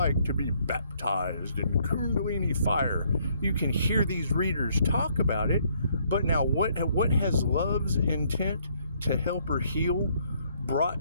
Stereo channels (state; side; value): inverted; both; correlation -0.68